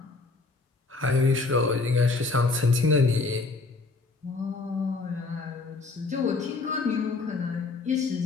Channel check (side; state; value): right; quieter; 3.8 dB